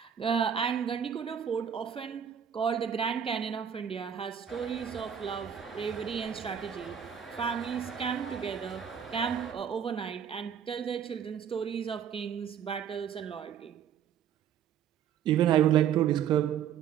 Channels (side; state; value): left; quieter; 8.6 dB